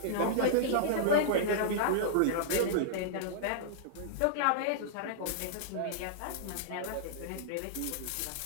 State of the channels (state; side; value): different; both; correlation -0.02